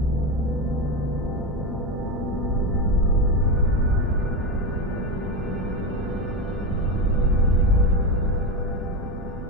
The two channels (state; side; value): normal; both; correlation 0.15